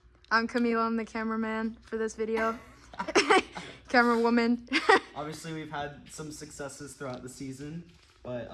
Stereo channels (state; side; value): identical; both; correlation 1.00